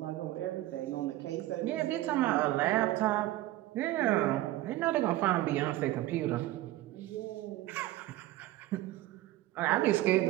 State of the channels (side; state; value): left; quieter; 15.9 dB